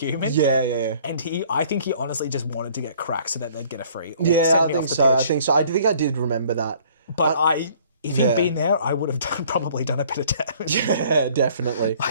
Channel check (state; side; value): inverted; both; correlation -0.56